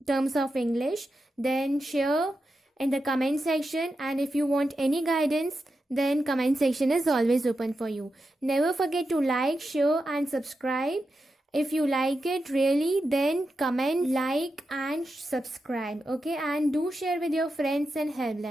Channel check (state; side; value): normal; both; correlation 0.88